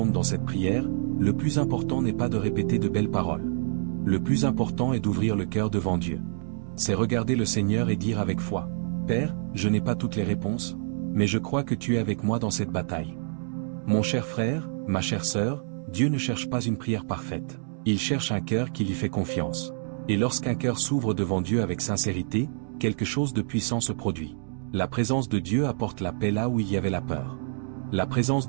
dans cette prière, le plus important n'est pas de répéter de belles paroles. Le plus important est d'ouvrir le cœur devant Dieu. C'est regarder le Seigneur et dire avec foi « Père, je n'ai pas toutes les réponses, mais je crois que tu es avec moi dans cette bataille. » Mon cher frère, ma chère sœur, Dieu ne cherche pas une prière parfaite. Il cherche un cœur qui lui fait confiance. Et lorsqu'un cœur s'ouvre devant Dieu avec sincérité, quelque chose de puissant se produit. La présence de Dieu apporte la paix là où il y avait la peur. La présence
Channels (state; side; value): silent; left; digital silence